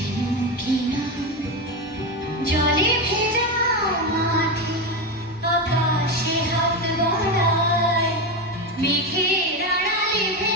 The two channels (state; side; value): normal; both; correlation 0.15